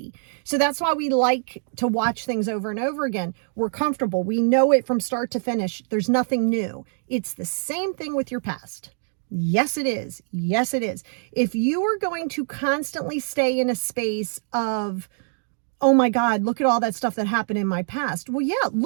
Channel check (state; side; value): silent; left; digital silence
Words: So that's why we like to watch things over and over again. We're comfortable. We know it from start to finish. There's nothing new. It's the same thing with your past. Yes, it is. Yes, it is. If you are going to constantly stay in a space of, oh my God, look at all that stuff that happened in my past. Well, yeah,